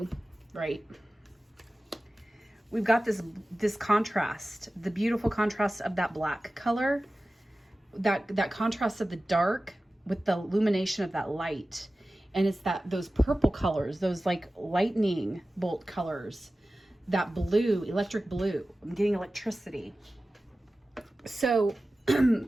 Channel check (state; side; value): normal; both; correlation 0.96